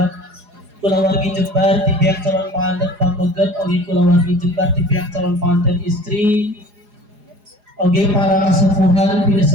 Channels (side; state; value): left; late; 4.8 ms